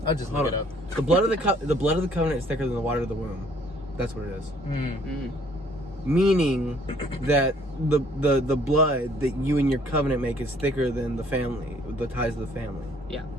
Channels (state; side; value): normal; both; correlation 0.60